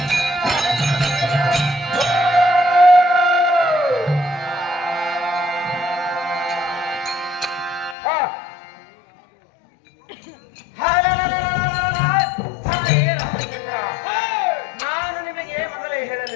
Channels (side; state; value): right; drops out; at 8.0 s